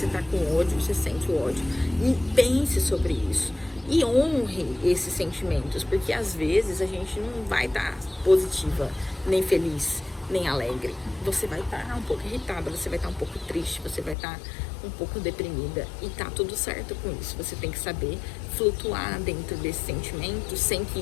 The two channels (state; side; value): drops out; right; at 14.2 s